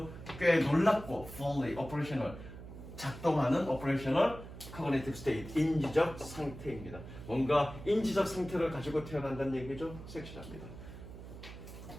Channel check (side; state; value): right; noise; hum, 13 dB below the sound